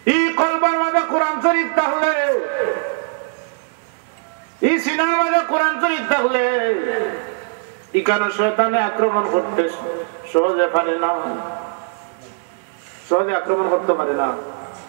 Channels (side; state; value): left; silent; 62 dB below the other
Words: এই কলবের মধ্যে কোরআন শরীফ থাকলে, এই সিনার মধ্যে কোরআন শরীফ থাকলে এখানে শয়তানে আক্রমণ করতে সহজে পারে না, সহজে আক্রমণ করতে পারে না।